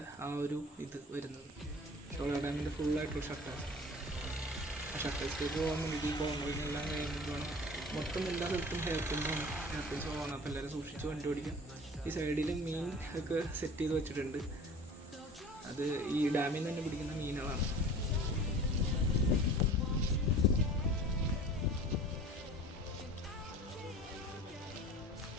ആ ഒരു ഇത് വരുന്നത്. ഷോളയാർ ഡാമിൻ്റെ ഫുള്ളായിട്ടുള്ള ഷട്ടേഴ്സിലേക്ക് പോകാൻ വേണ്ടിയിട്ട് ഈ കോർണറിനെല്ലാം കഴിഞ്ഞിട്ടാണ്. മൊത്തം എല്ലാ സ്ഥലത്തും ഹെയർ പിൻസ് പോകണം. അപ്പോൾ എല്ലാവരും സൂക്ഷിച്ച് വണ്ടി ഓടിക്കാം. ഈ സൈഡിൽ മീൻ ഒക്കെ സെറ്റ് ചെയ്ത് വെച്ചിട്ടുണ്ട്, അത് ഈ ഡാമിൽ നിന്ന് തന്നെ പിടിക്കുന്ന മീനുകളാണ്.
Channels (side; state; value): both; normal; correlation 0.43